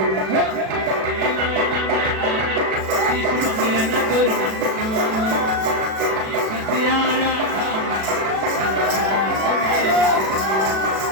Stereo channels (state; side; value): late; left; 37 ms